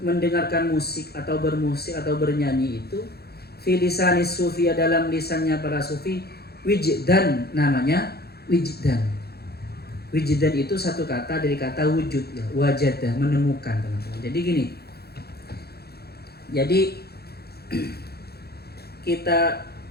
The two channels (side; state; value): right; late; 0.46 ms